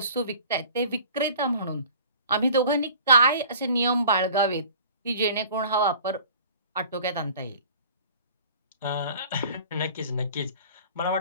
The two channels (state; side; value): inverted; both; correlation -0.46